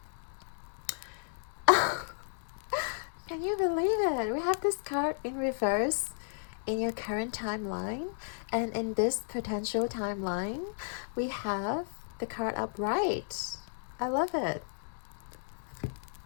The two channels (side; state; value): right; silent; digital silence